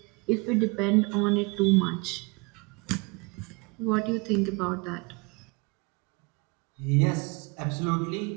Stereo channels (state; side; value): quieter; left; 28.7 dB